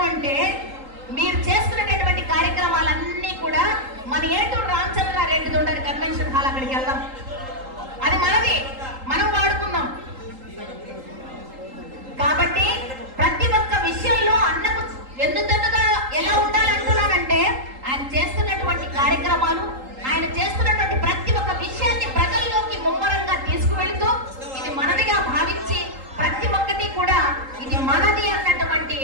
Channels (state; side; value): late; left; 3.8 ms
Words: అంటే మీరు చేస్తున్నటువంటి కార్యక్రమాలన్నీ కూడా మన ఏటూరు రామచంద్రారెడ్డిది ఉండని కన్వెన్షన్ హాల్, అక్కడికి వెళ్దాం. అది మనది, మనం వాడుకుందాం. కాబట్టి ప్రతి ఒక్క విషయంలో అన్నకు వెన్నుదన్నుగా ఎలా ఉండాలంటున్నానంటే ఆయన చేస్తున్నటువంటి కార్యక్రమాలు, ఆయన చేస్తున్నటువంటి ప్రతి ఒక్క విషయాన్ని ప్రజల్లోకి ముమ్మరంగా తీసుకువెళుతూ ఇది మనదిగా భావించి ప్రతి ఒక్కటి కూడా ఇది మనది అన్నటువంటి